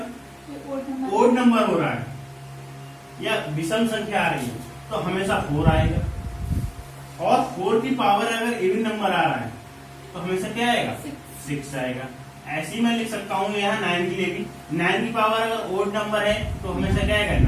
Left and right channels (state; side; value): identical; both; correlation 1.00